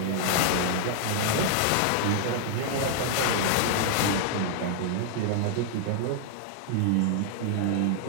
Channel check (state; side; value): different; both; correlation 0.00